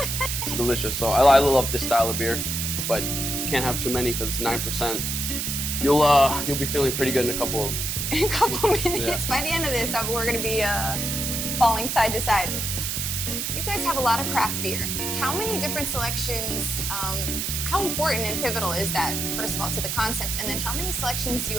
delicious. So I love this style of beer, but can't have too many because it's 9%. You'll be feeling pretty good in a couple of them. In a couple minutes. Yeah. By the end of this, we're gonna be falling side to side. You guys have a lot of craft beer. How many different selections, how important and pivotal is that, first of all, to the concept, and then how many selections do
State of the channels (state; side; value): noise; right; hiss, 2 dB below the sound